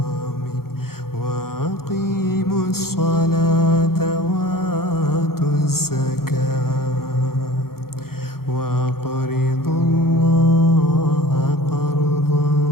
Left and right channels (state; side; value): late; right; 0.93 ms